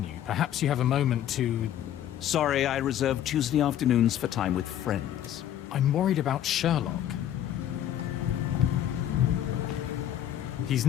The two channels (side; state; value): right; quieter; 11.1 dB